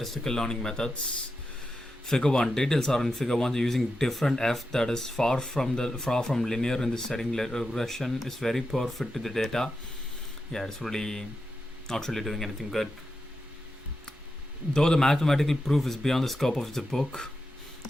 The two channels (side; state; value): both; normal; correlation 0.88